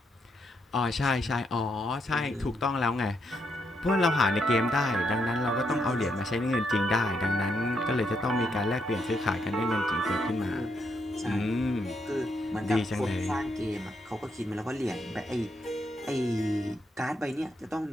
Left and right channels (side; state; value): both; normal; correlation 0.78